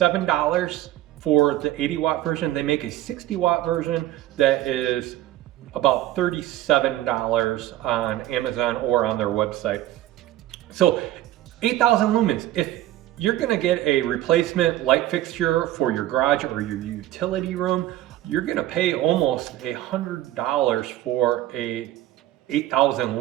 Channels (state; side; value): quieter; left; 14.5 dB